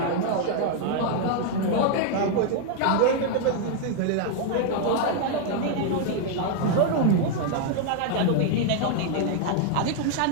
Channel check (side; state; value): both; different; correlation 0.00